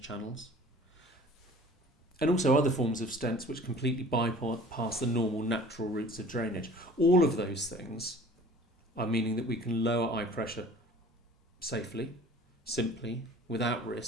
channels. And also other forms of stents which completely bypass the normal natural routes of drainage. All of those things are meaning that we can lower eye pressure safely, simply, without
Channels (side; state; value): both; normal; correlation 0.47